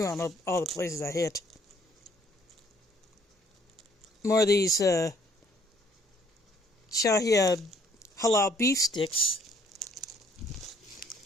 all the places I hit. More of these Shahia halal beef sticks.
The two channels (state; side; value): normal; both; correlation 0.62